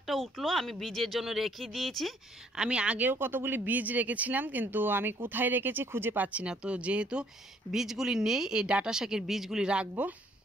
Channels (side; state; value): both; normal; correlation 0.64